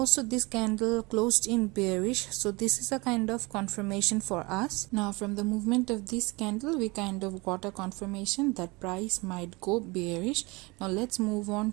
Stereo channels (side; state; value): left; quieter; 25.3 dB